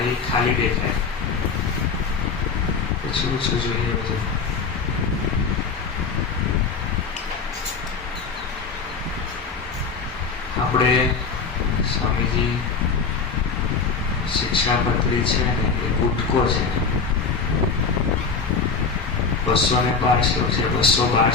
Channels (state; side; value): quieter; right; 5.2 dB